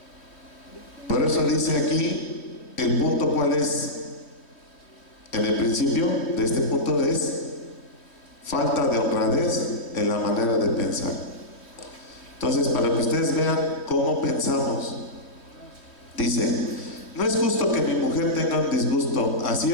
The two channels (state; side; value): late; right; 3.1 ms